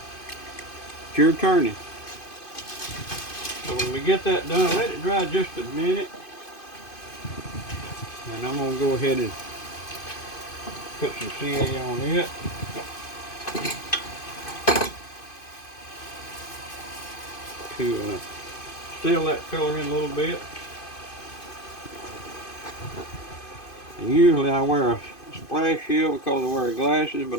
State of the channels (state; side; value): late; right; 2.5 ms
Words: your turning. So when we get that done, let it dry just a minute. And I'm going to go ahead and put some CA on it. To seal that color in a little bit. And usually I wear a splash shield because I wear glasses,